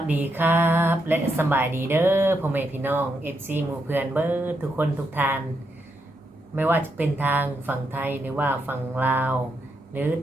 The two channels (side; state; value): both; normal; correlation 0.81